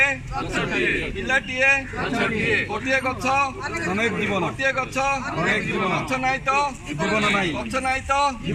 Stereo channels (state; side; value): identical; both; correlation 1.00